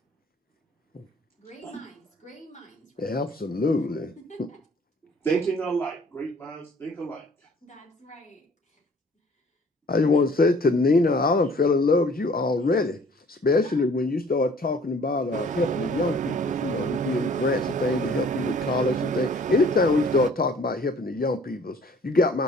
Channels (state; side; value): normal; both; correlation 0.54